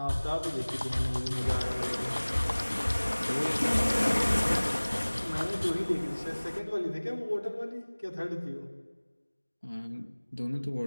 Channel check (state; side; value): inverted; both; correlation -1.00